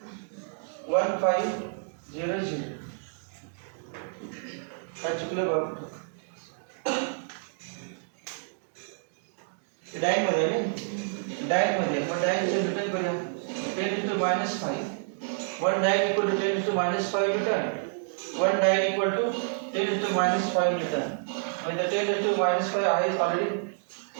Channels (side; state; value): left; silent; digital silence